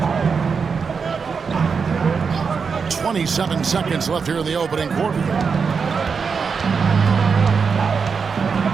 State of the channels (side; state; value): left; quieter; 5.6 dB